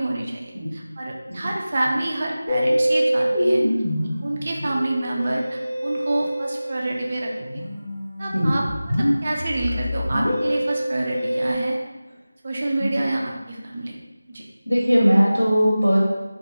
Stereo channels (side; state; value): both; inverted; correlation -0.97